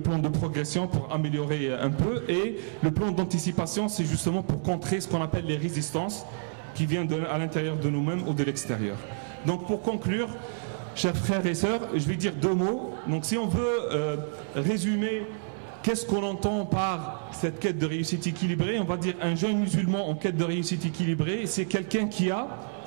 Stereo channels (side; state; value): left; silent; digital silence